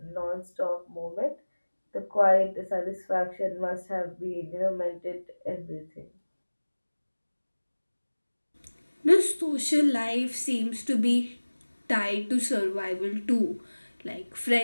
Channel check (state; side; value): inverted; both; correlation -1.00